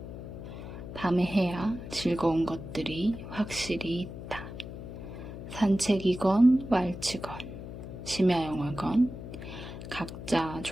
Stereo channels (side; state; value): left; noise; hum, 10 dB below the sound